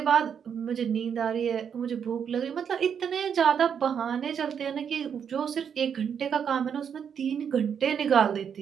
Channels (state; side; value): quieter; left; 7.6 dB